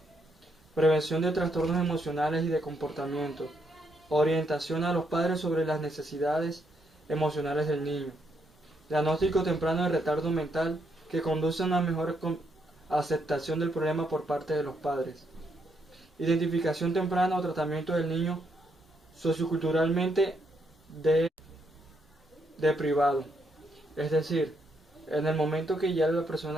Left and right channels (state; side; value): normal; both; correlation 0.76